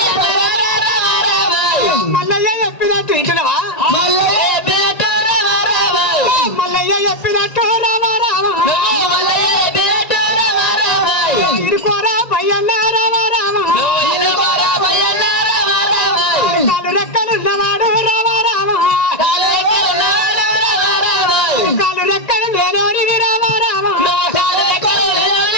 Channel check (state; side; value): late; right; 1.9 ms